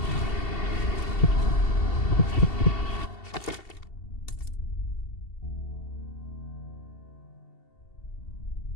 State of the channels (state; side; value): late; right; 2.7 ms